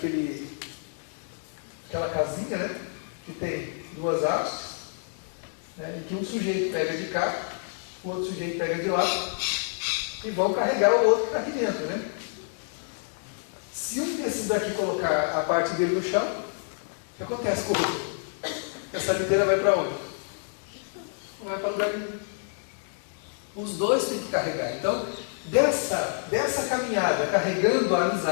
aquela casinha, né, que tem duas hastes, né, e que um sujeito pega de cá, o outro sujeito pega de lá, e vão carregar o outro que está aqui dentro. Né? Se um desses daqui colocar a parte dele no chão, o que acontece com o outro? Essa liteira vai para onde? Não vai para lugar nenhum. Os dois têm que carregar. Então, dessa caminhada, carregando a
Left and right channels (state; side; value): silent; right; 59 dB below the other